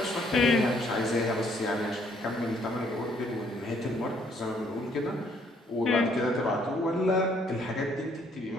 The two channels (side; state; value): both; normal; correlation 0.66